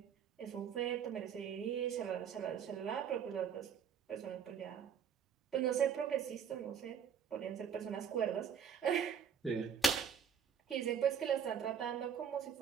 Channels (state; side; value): quieter; left; 7.6 dB